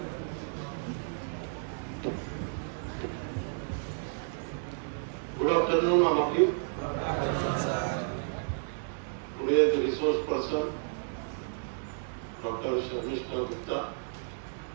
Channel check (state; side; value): silent; left; digital silence